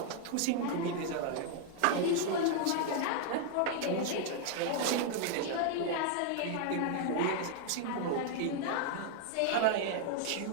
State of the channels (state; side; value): different; both; correlation 0.00